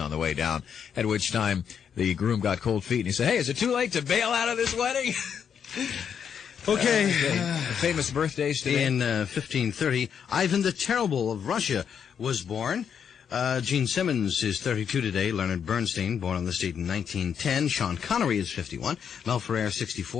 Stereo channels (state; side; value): quieter; right; 7.7 dB